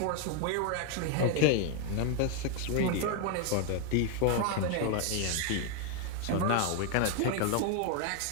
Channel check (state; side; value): different; both; correlation 0.01